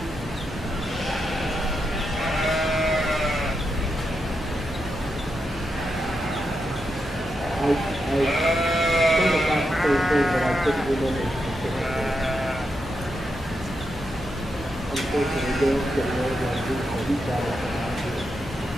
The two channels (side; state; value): both; normal; correlation 0.85